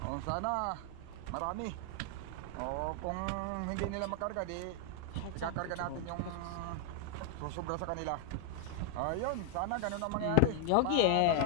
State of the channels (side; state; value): both; different; correlation 0.00